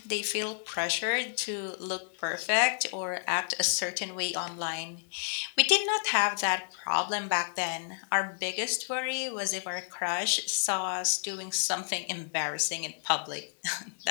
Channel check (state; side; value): silent; right; 57 dB below the other